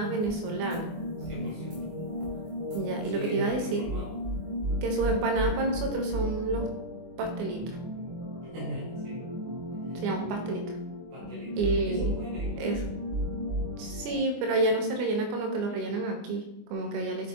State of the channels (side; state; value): left; late; 24 ms